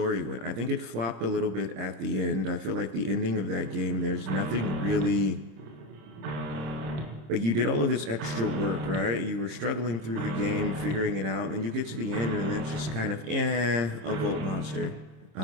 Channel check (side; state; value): left; late; 26 ms